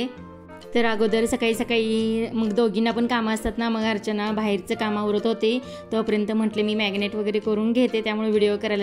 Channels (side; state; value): both; identical; correlation 1.00